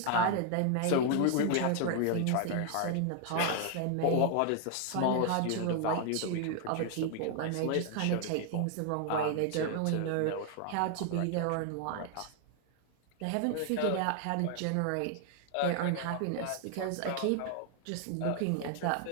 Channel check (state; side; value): different; both; correlation 0.00